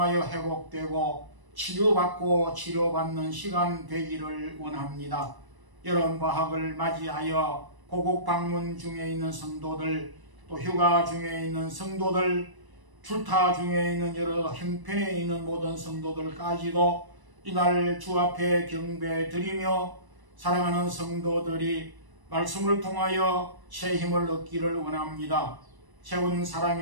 회복되고 치료받는 시간 되기를 원합니다. 여름 방학을 맞이하여 고국 방문 중에 있는 성도들, 또 휴가 중에 있는 성도들, 출타 중에 있는 여러 형편에 있는 모든 성도들까지도 이날 주 앞에 경배 드리며 사랑하는 성도들이 말씀을 통하여 새 힘을 얻기를 원합니다. 세운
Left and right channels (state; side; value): late; left; 1.0 ms